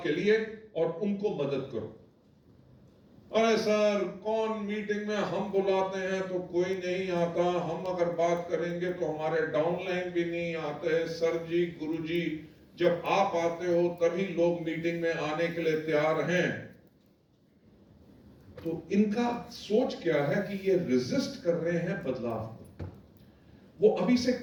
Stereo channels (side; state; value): both; identical; correlation 1.00